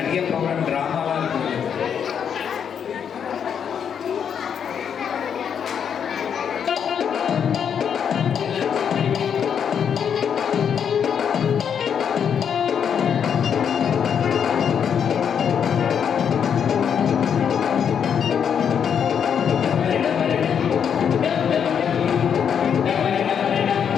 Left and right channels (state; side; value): quieter; right; 7.8 dB